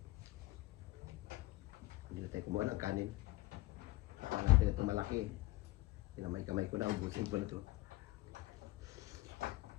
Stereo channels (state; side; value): quieter; right; 18.5 dB